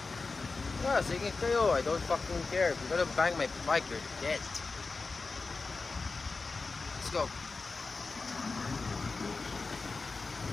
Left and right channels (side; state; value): right; quieter; 4.1 dB